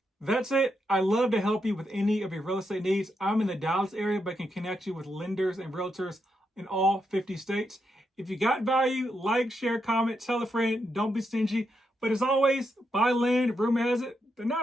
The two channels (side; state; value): both; normal; correlation 0.82